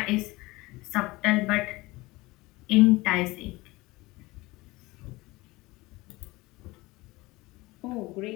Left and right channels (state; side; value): quieter; right; 21.3 dB